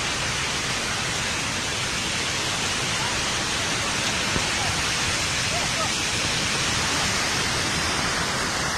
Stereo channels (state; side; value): identical; both; correlation 1.00